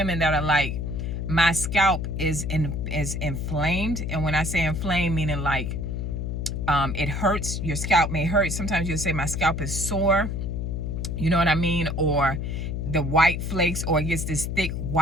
that are like, my scalp is inflamed, and when I say inflamed, meaning like it hurts, your scalp may hurt. Sometimes you'll say my scalp is sore, you know what I mean? Or the white flakes, or it gets this thick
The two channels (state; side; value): noise; left; hum, 3 dB below the sound